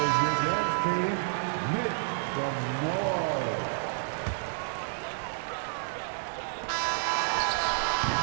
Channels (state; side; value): silent; left; digital silence